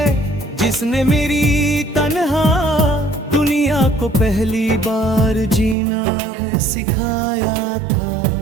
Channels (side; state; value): left; drops out; at 5.8 s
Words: जिसने मेरी तन्हा दुनिया को पहली बार जीना है सिखाया था।